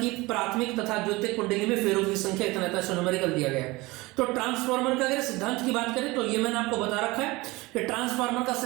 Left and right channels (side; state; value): left; quieter; 22.1 dB